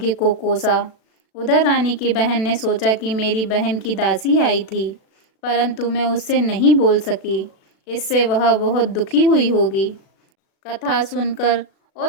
को कोसा। उधर रानी की बहन ने सोचा कि मेरी बहन की दासी आई थी, परंतु मैं उससे नहीं बोल सकी, इससे वह बहुत दुखी हुई होगी। कथा सुनकर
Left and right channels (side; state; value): right; late; 36 ms